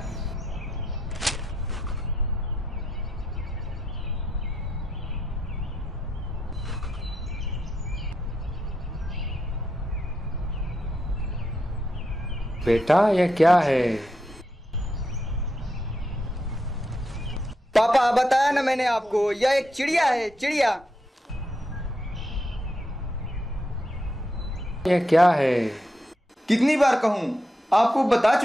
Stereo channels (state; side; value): normal; both; correlation 0.82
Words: बेटा यह क्या है? पापा, बताया ना मैंने आपको, यह एक चिड़िया है, चिड़िया। यह क्या है? कितनी बार कहूं? आपको बता